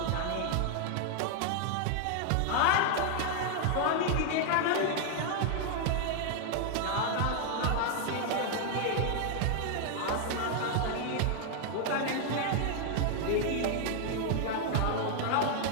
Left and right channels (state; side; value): different; both; correlation 0.00